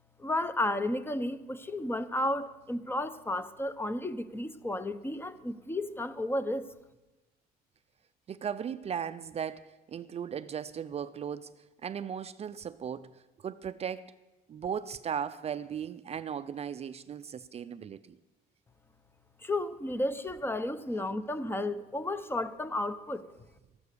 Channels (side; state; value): both; normal; correlation 0.63